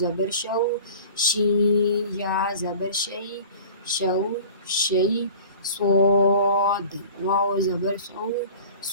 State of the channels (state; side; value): inverted; both; correlation -0.42